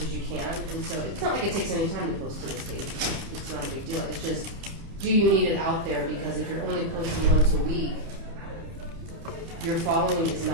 as you can, and so it's not like it takes any time to post to this page. It's not a big deal, it's just, do you need it out there? Because if you're only posting once a week, your following is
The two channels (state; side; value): late; left; 29 ms